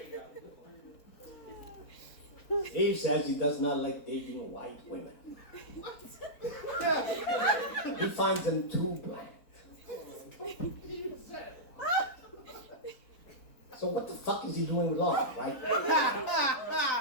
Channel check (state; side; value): late; right; 4.1 ms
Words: Steve says he does not like dating white women. He finds them too bland. So what the fuck is he doing with Laura, right?